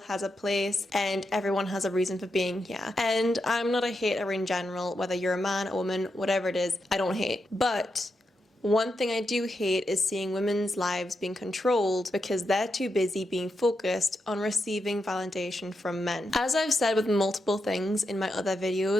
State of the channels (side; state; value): both; normal; correlation 0.86